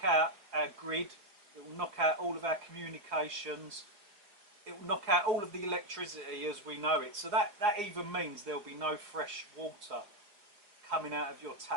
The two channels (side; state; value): left; late; 4.9 ms